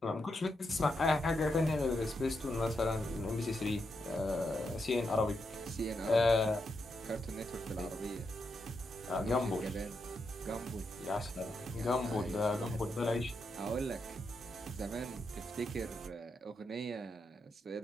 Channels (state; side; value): normal; both; correlation 0.83